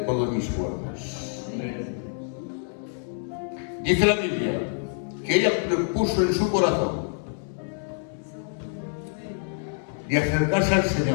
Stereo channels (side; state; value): right; silent; digital silence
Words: mis fuerzas. Dice la Biblia que ella propuso en su corazón de acercarse al